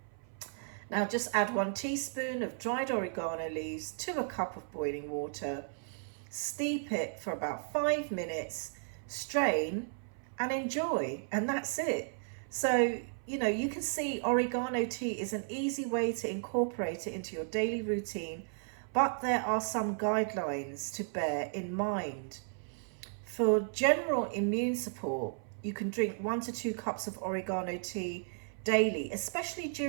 Now just add 1 teaspoon of dried oregano leaves to a cup of boiling water. Steep it for about 5 minutes, strain and enjoy, and that's it. So, you can see oregano tea is an easy way to incorporate it into your daily routine, but there are some guidelines to bear in mind. For general immune support, you can drink 1 to 2 cups of oregano tea daily, especially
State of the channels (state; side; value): silent; left; 55 dB below the other